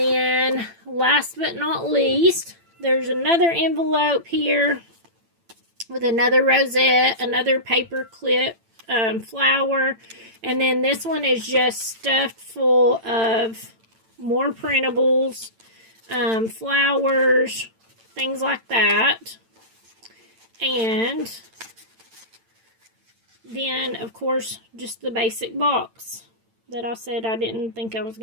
last but not least, there's another envelope here with another rosette, another paper clip, flower. And then this one is just stuffed full of more printables, flowers, things like that. And then, of course, just the basic box that I said I didn't think I was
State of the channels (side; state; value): left; late; 8.9 ms